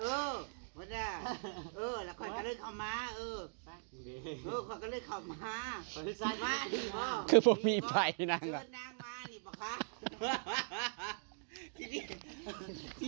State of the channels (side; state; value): left; silent; digital silence